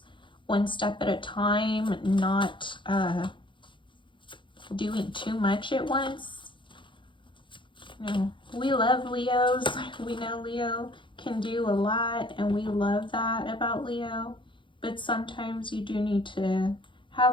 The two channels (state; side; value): late; right; 0.24 ms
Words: one step at a time, not doing too much at once. You know, we love Leos. We know Leo can do a lot and we love that about Leo, but sometimes you do need to have